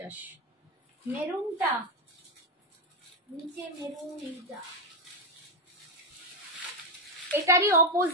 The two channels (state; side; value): normal; both; correlation 0.05